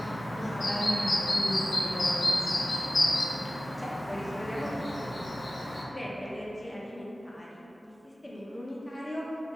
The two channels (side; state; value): both; normal; correlation 0.96